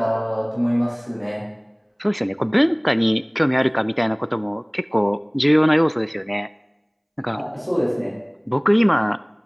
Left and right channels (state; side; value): identical; both; correlation 1.00